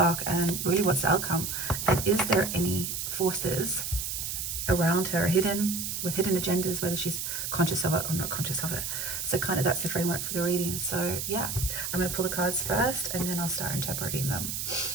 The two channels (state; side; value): noise; right; hiss, 3 dB below the sound